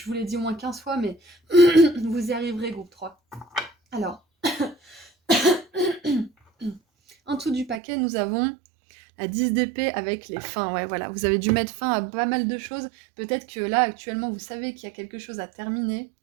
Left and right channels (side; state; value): left; drops out; at 7.8 s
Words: vous l'ai dit au moins 15 fois, mais vous y arriverez, groupe 3. Alors, en dessous du paquet, nous avons la 10 d'épée avec les fins. Ouais, voilà, vous avez dû mettre fin à pas mal de choses. Peut-être que là, actuellement, vous savez qu'il y a quelque chose à terminer.